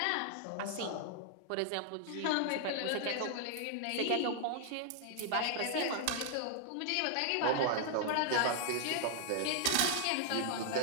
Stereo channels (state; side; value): different; both; correlation -0.01